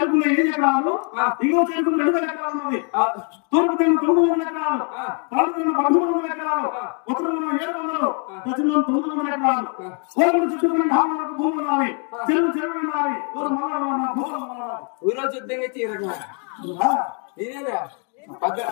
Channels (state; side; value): quieter; right; 39.6 dB